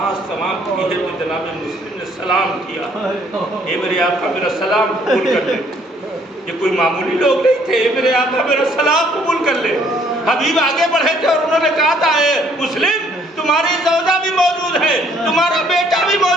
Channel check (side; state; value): both; normal; correlation 0.64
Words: تمام کی ہے تو جناب مسلم نے سلام کیا، اے میرے آقا میرا سلام قبول کر لے۔ یہ کوئی معمولی لوگ نہیں تھے، اے میرے آقا میرا سلام قبول کر لے۔ حبیب آگے بڑھے تھے اور انہوں نے کہا تھا، اے مسلم تمہاری زوجہ بھی موجود ہے، تمہارا بیٹا بھی